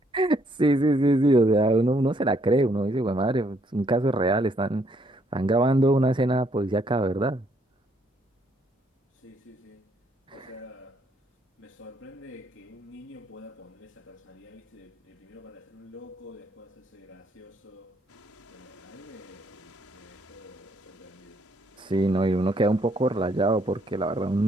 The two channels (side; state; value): both; normal; correlation 0.69